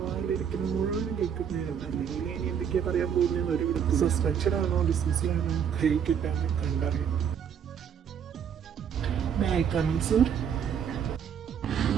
വായിലിരിക്കുന്ന മുഴുവനും കേൾക്കുന്നതാണ്. അല്ലെങ്കിൽ ഇനി എന്തൊക്കെയാ പറയാൻ പോകുന്നതെന്ന് ഒരു വിധത്തിൽ സസ്പെൻഷൻ ആണോ ഡിസ്മിസിലാണോ കൈ കിട്ടാൻ കണ്ടറിയാം.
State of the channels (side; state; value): left; quieter; 8.0 dB